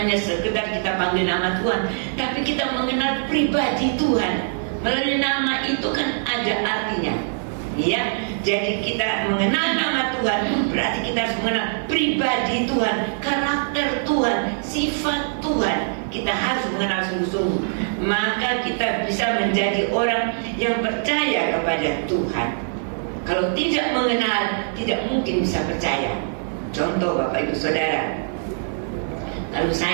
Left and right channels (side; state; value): left; silent; digital silence